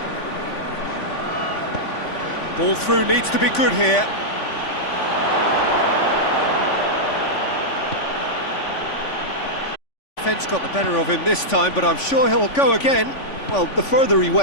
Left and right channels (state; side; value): late; right; 3.5 ms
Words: Ball through needs to be good here. Defence got the better of him this time, but I'm sure he'll go again. Well, the further he